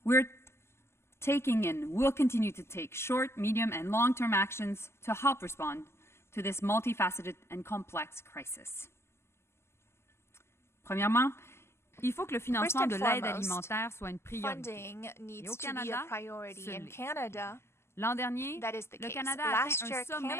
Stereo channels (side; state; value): right; late; 0.12 ms